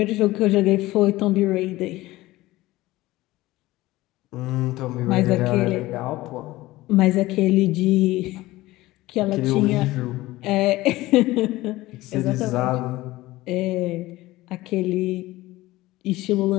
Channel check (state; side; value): quieter; right; 18.1 dB